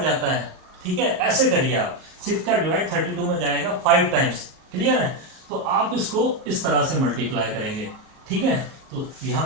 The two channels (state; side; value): late; left; 38 ms